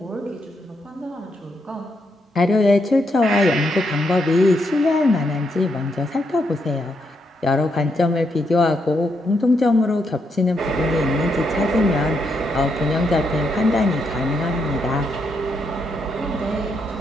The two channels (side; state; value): both; normal; correlation 0.79